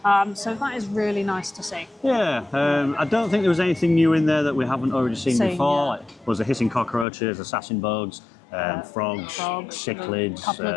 So that is really nice to see. Yeah, I don't think there was anything new in there that we haven't already seen before. Yeah. Like, was the hissing cockroaches, assassin bugs, frogs, cichlids, a couple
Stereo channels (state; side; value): drops out; right; at 7.1 s